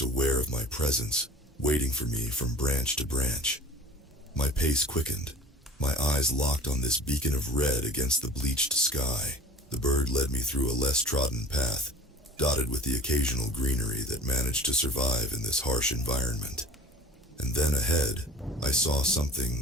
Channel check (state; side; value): normal; both; correlation 0.42